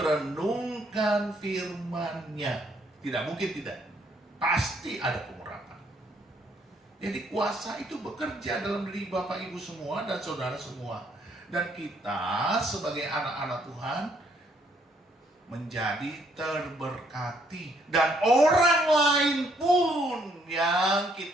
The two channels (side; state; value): both; normal; correlation 0.69